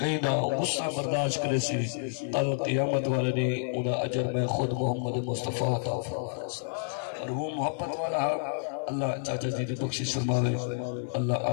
نہ غصہ برداشت کرے سی قیامت والے نے انہا اجر میں خود محمد مصطفیٰ عطا فرمائے اور وہ محبت والا اللہ چاچا جی دی بخشش فرماوے اللہ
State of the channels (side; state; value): right; silent; 58 dB below the other